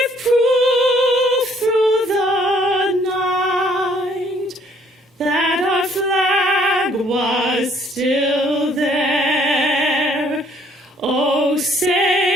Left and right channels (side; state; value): both; normal; correlation 0.62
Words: proof through the night that our flag was still there. Oh,